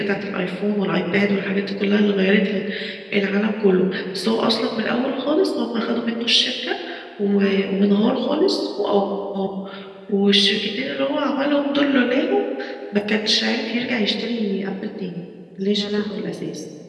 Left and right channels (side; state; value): both; identical; correlation 1.00